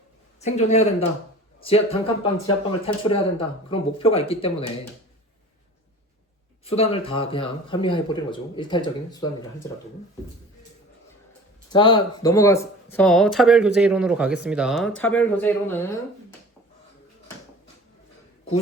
생존해야 된다. 단칸방 지하방을 탈출해야 된다. 그런 목표가 있기 때문에 수단을 다 그냥 합리화해버리는 거죠. 일탈적인 수단이라 할지라도. 자, 넘어가서 차별교제 이론으로 가겠습니다. 차별교제 이론은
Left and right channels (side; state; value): both; normal; correlation 0.42